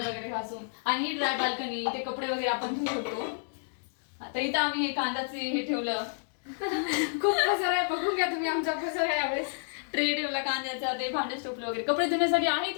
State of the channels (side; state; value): right; silent; digital silence